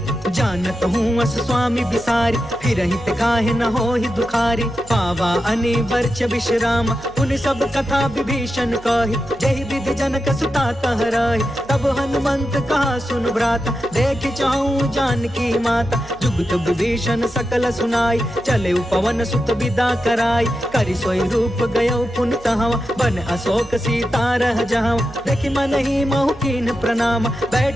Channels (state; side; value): noise; right; hum, 21 dB below the sound